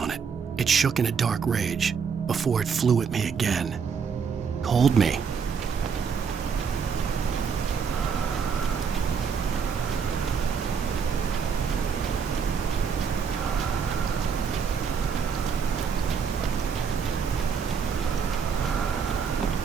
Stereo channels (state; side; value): quieter; left; 6.3 dB